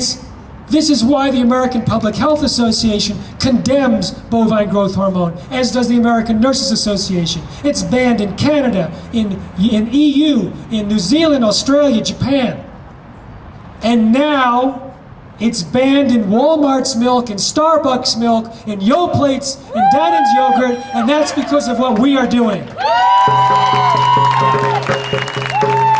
is why the American Public Health Association condemns bovine growth hormone, as does the American Nurses Association. It's banned in Canada, in EU, in New Zealand, Australia, Japan. And now it's banned in Walmart's milk, in Starbucks milk, in Yoplates, in Dannon's yogurt, and that's because of what we are doing.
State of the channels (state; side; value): identical; both; correlation 1.00